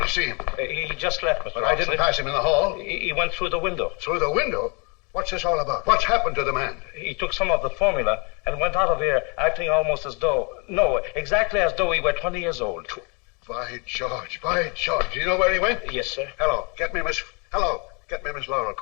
to see him. He just left, Mr. But I Oxley. didn't pass him in the hall. He went through the window. Through the window? What's this all about? What's happened to the man? He took some of the formula and went out of here acting almost as though... No, exactly as though he were 20 years old. By George, by George. Do you know where he went? Yes, sir. Hello, get me Miss Laurel,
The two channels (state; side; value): quieter; right; 32.5 dB